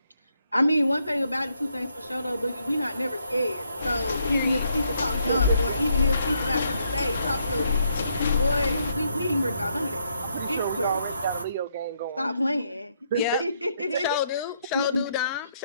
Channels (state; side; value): inverted; both; correlation -0.74